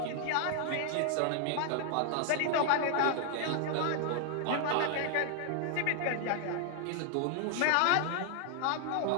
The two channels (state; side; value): different; both; correlation 0.00